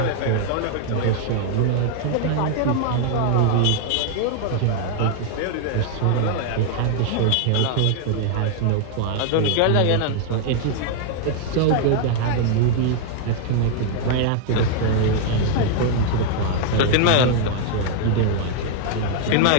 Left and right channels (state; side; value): different; both; correlation 0.00